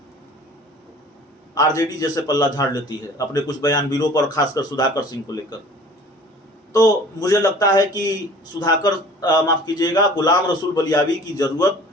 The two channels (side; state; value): both; normal; correlation 0.47